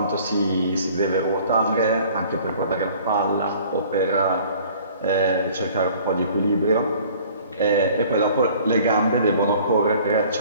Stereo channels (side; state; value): both; inverted; correlation -0.52